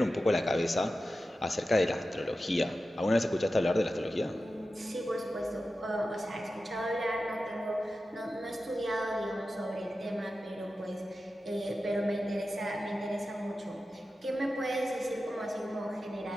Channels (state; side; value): normal; both; correlation 0.93